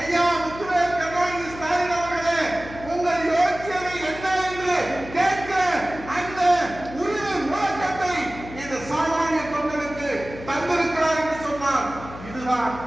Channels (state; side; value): noise; left; hum, 14 dB below the sound